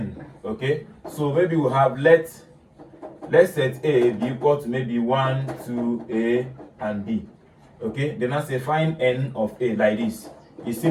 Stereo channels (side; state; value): both; identical; correlation 1.00